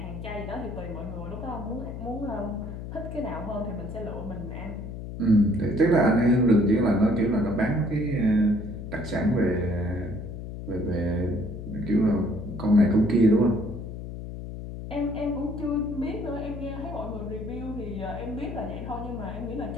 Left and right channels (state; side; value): noise; left; hum, 8 dB below the sound